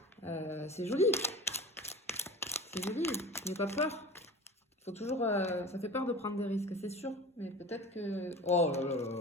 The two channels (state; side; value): normal; both; correlation 0.36